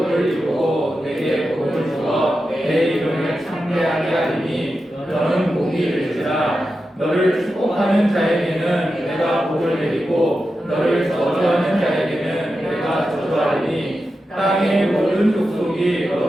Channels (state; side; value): normal; both; correlation 0.90